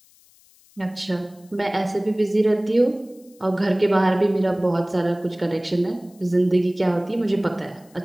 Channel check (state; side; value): noise; left; hiss, 29 dB below the sound